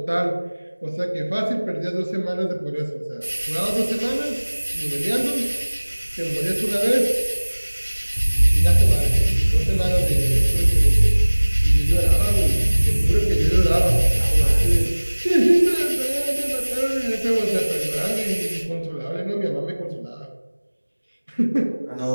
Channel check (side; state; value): both; inverted; correlation -1.00